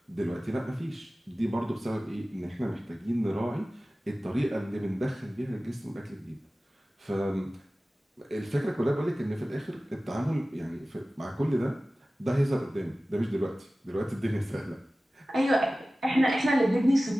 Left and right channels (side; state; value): both; normal; correlation 0.97